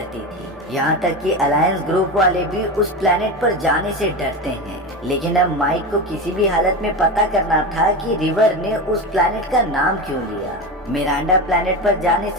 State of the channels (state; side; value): normal; both; correlation 0.21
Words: थी। यहाँ तक कि अलायंस ग्रुप वाले भी उस प्लेनेट पर जाने से डरते हैं। लेकिन अब माइक को किसी भी हालत में पता करना था कि रिवर ने उस प्लेनेट का नाम क्यों लिया। मिरांडा प्लेनेट पर जाने